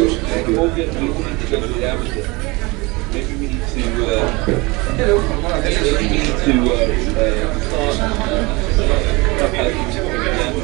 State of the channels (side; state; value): left; quieter; 24.8 dB